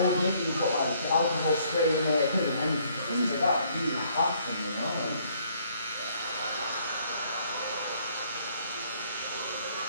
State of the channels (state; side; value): inverted; both; correlation -0.65